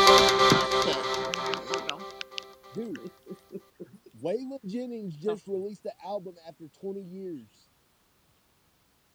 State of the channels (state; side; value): identical; both; correlation 1.00